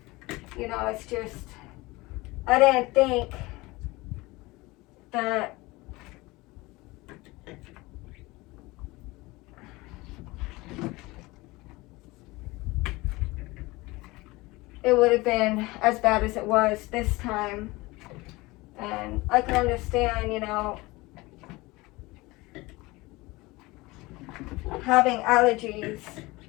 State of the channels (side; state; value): right; quieter; 21.8 dB